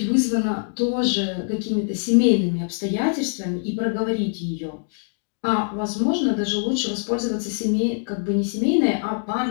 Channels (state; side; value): silent; right; digital silence